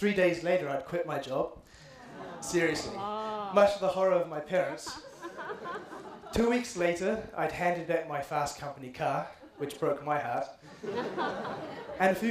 days later, I'd quit my job. Seriously, much to the horror of my parents. 2 weeks later, I'd handed back my fast company car, which broke my heart. And a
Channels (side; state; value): both; identical; correlation 1.00